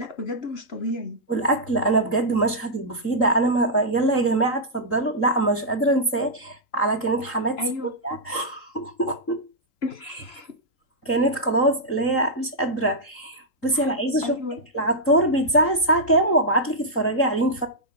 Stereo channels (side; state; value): right; late; 3.8 ms